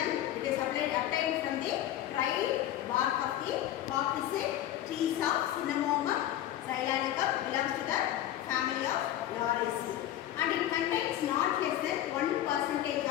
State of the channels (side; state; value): right; quieter; 12.6 dB